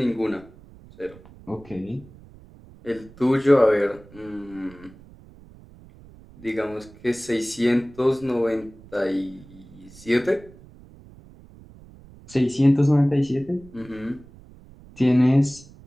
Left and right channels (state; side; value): noise; right; rumble, 22 dB below the sound